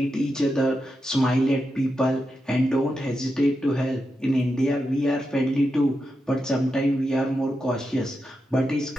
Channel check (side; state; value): both; normal; correlation 0.87